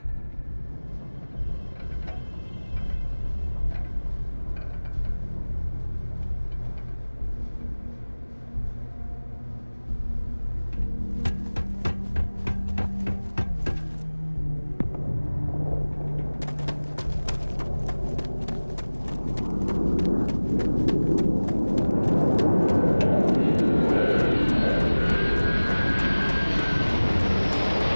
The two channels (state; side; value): inverted; both; correlation -1.00